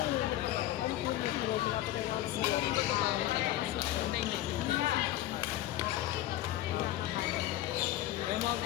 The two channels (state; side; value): quieter; right; 14.3 dB